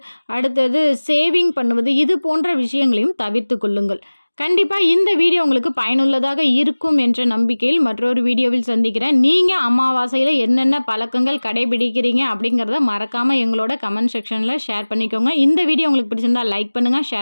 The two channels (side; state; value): both; inverted; correlation -1.00